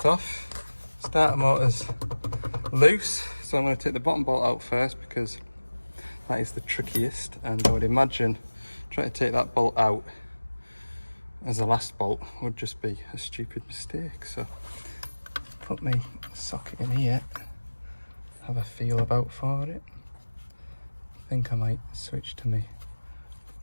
off. Starter motor's loose, so I'm going to take the bottom bolt out first because that is the trickiest, and I would imagine trying to take that bolt out as the last bolt would just be a stupid mistake. So put my socket in here, have a feel about for it. I think I might switch to my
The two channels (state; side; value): inverted; both; correlation -1.00